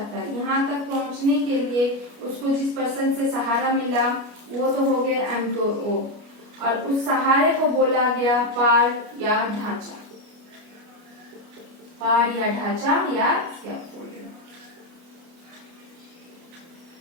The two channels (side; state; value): left; late; 29 ms